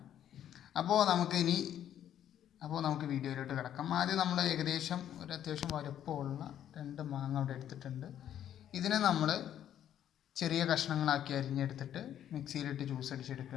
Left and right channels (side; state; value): right; quieter; 10.5 dB